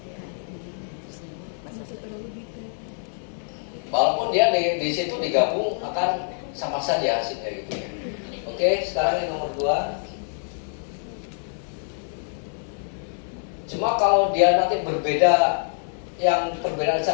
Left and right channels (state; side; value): silent; right; digital silence